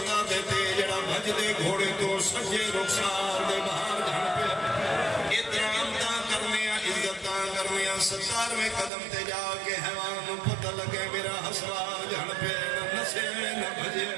تے جڑا بھج دے گھوڑے تو سجے رخسار دے باہر جان پہ اترام تا کرنے عزتاں کرنے ستار میں قدم تے جا کے حیوان پتہ لگے میرا حسرار جان پہ نسے نہ بھجے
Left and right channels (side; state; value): left; drops out; at 8.9 s